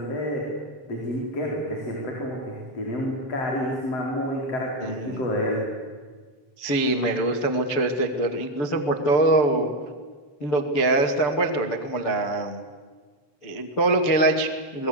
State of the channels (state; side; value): late; right; 6.9 ms